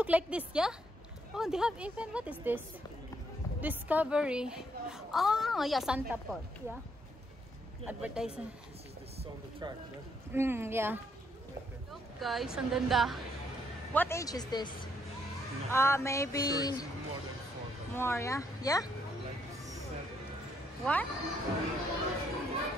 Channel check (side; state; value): both; normal; correlation 0.73